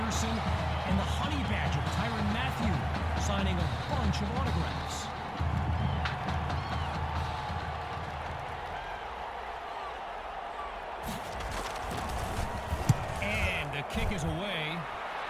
and the Honey Badger, Tyrann Mathieu, signing a bunch of autographs. And the kick is away.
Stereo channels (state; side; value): identical; both; correlation 1.00